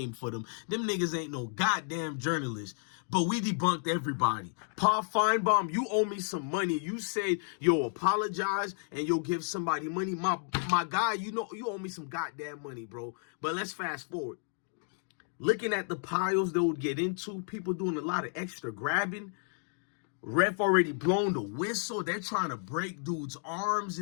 for them. Them niggas ain't no goddamn journalists. But we debunked everybody. Paul Feinbaum, you owe me some money. You said you'll apologize and you'll give somebody money. My guy, you know, you owe me some goddamn money, bro. But let's fast forward. Looking at the piles they would get into, people doing a lot of extra grabbing. Ref already blown the whistle. They're trying to break dudes' arms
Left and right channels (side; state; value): right; silent; 56 dB below the other